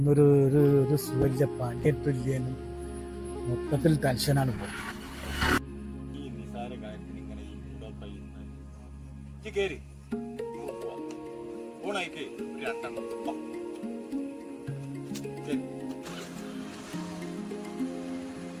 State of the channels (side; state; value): both; identical; correlation 1.00